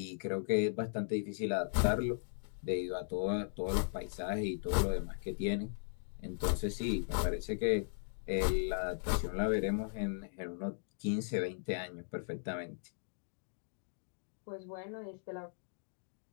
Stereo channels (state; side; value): silent; right; digital silence